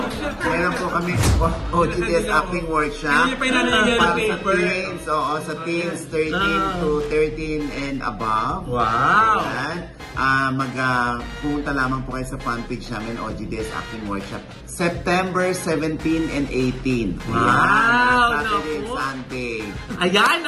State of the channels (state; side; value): identical; both; correlation 1.00